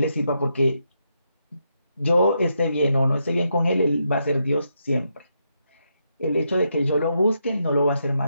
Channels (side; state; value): both; inverted; correlation -0.81